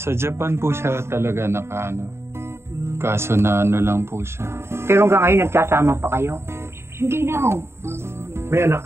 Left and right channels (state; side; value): late; left; 0.12 ms